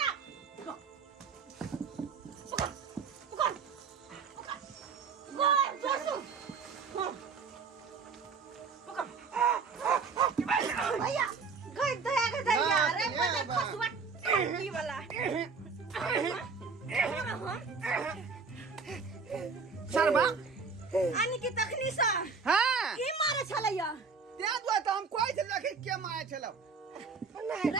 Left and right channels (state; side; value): quieter; left; 5.1 dB